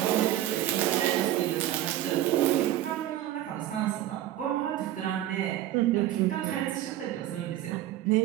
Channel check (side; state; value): left; quieter; 13.3 dB